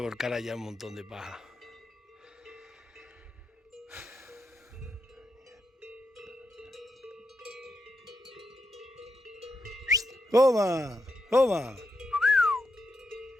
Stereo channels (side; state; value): both; normal; correlation 0.84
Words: allá un montón de paja. ¡Toma! ¡Toma!